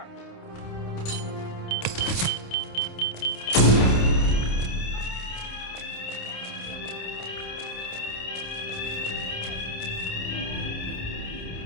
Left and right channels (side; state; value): right; late; 28 ms